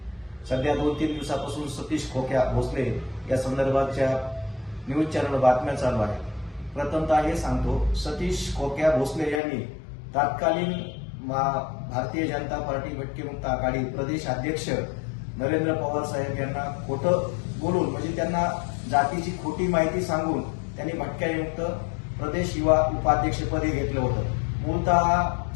सध्या 2-3 दिवसापासून सतीश खोक्या भोसले या संदर्भाच्या न्यूज चॅनल बातम्या चालू आहेत। प्रथमतः हे सांगतो, सतीश खोक्या भोसले यांनी तत्कालीन भारतीय जनता पार्टी भटके मुक्त आघाडी प्रदेश अध्यक्ष नरेंद्र पवार साहेब यांना खोटं बोलून, म्हणजे त्यांना जातीची खोटी माहिती सांगून त्यांनी भटक्यामुक्त प्रदेश युवा उपाध्यक्षपदी घेतलं होतं। मूलतः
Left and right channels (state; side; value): drops out; right; at 9.4 s